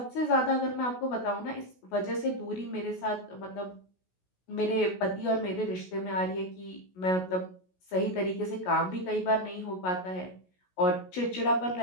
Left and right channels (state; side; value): late; right; 16 ms